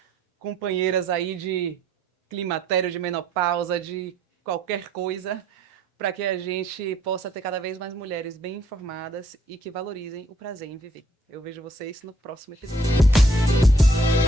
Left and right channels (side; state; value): both; normal; correlation 0.65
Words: companheiras aí de climatério, de menopausa, de qualquer coisa, para que a gente possa ter cada vez mais mulheres bem informadas e que valorizem o prazer em viver. Eu vejo vocês no próximo episódio.